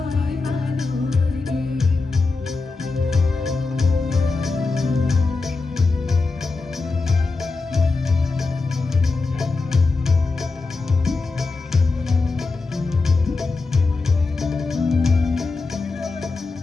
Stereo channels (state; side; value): quieter; right; 3.9 dB